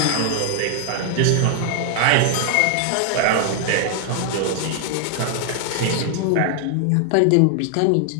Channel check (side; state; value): both; different; correlation 0.00